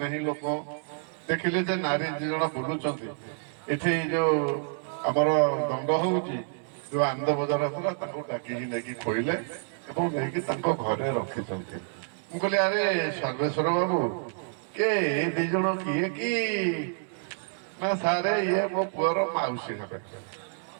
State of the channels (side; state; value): left; silent; 59 dB below the other